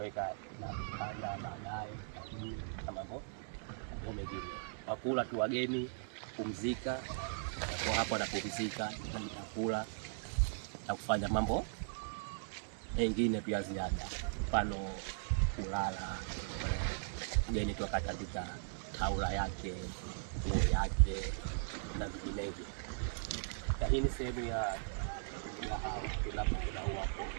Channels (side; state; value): left; silent; digital silence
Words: na vitanda baadaye na mambo mengine. Wakula tu wageni kupumzika, kwa hapo wanapumzika na kula na kufanya mambo mengine pia ziada, mfano kulala. Mgeni tu akatandika taula yake, nguo yake na vinginevyo. Hii ni sehemu ya hao tunapoona hapo,